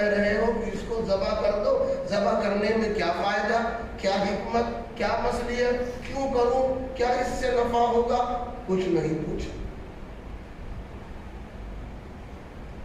رہے ہو کہ اس کو ذبح کر دو۔ ذبح کرنے میں کیا فائدہ، کیا حکمت، کیا مصلحت، کیوں کروں، کیا اس سے نفع ہوگا؟ کچھ نہیں پوچھا۔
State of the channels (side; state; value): both; identical; correlation 1.00